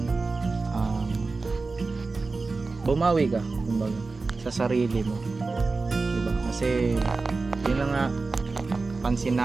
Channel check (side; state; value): left; quieter; 3.9 dB